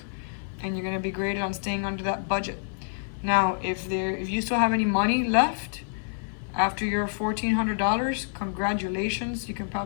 and you're gonna be graded on staying under that budget. Now, if you still have any money left after your $1,400, congratulations. You can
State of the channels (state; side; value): silent; right; 60 dB below the other